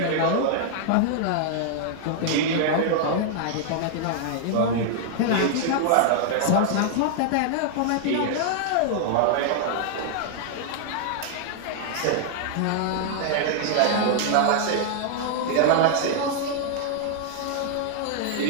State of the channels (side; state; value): both; different; correlation -0.01